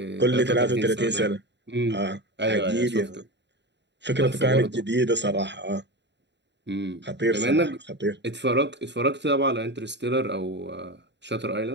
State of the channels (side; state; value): left; late; 0.51 ms